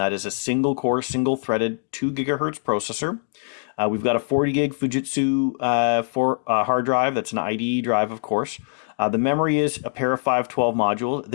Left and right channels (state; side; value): silent; right; digital silence